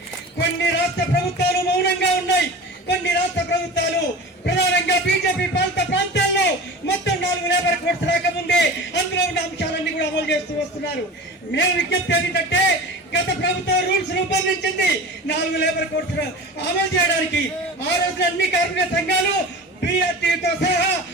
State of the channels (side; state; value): both; normal; correlation 0.34